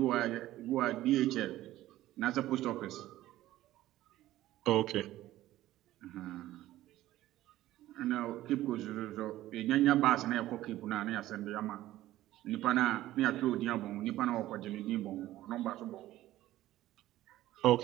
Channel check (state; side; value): quieter; left; 15.0 dB